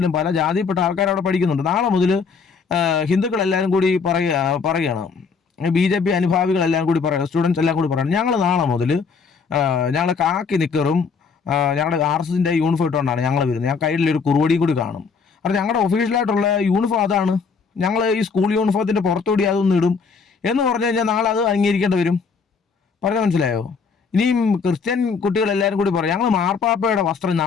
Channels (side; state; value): right; quieter; 5.4 dB